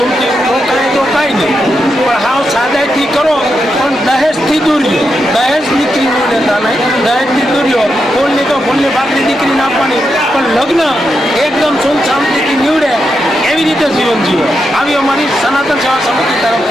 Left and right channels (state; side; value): normal; both; correlation 0.85